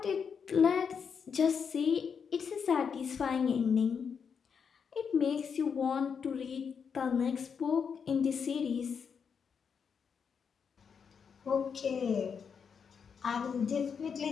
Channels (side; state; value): right; quieter; 6.5 dB